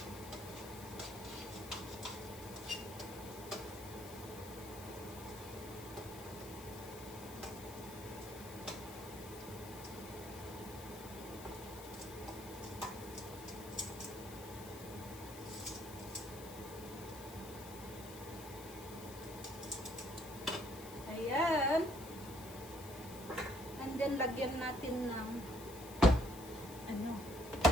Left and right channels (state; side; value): noise; left; hiss, 14 dB below the sound